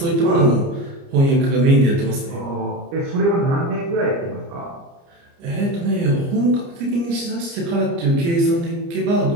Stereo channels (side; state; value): left; late; 29 ms